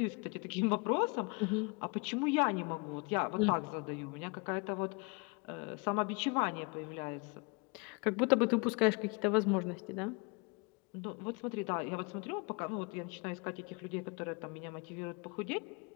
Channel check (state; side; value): quieter; right; 30.9 dB